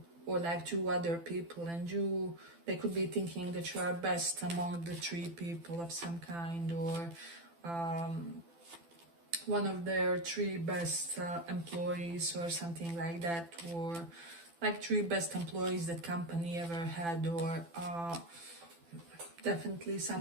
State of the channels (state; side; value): late; left; 12 ms